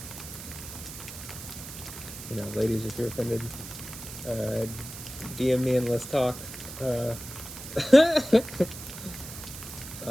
you know, ladies, if you're offended, DM me and let's talk. If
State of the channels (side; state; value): right; noise; hiss, 11 dB below the sound